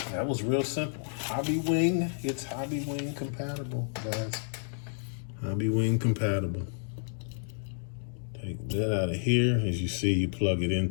That was real simple. Hobbywing, it's Hobbywing compatible, guys. Hobbywing compatible. Take that out of here. As you see, you plug it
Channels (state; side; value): silent; right; digital silence